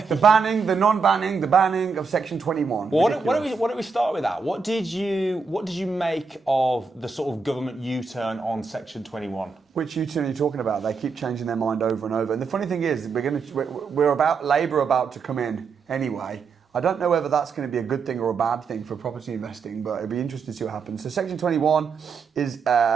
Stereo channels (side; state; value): left; quieter; 5.1 dB